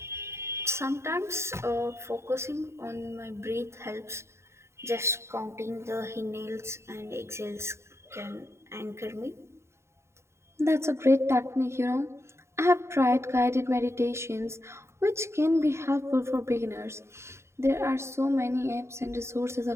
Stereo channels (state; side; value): late; left; 0.13 ms